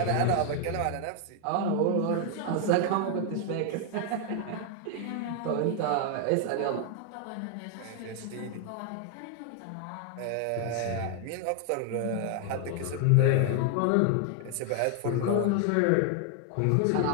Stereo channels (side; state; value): both; different; correlation 0.00